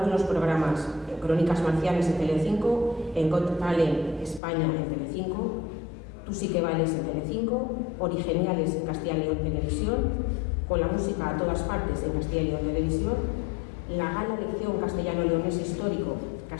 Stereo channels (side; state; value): right; drops out; at 4.4 s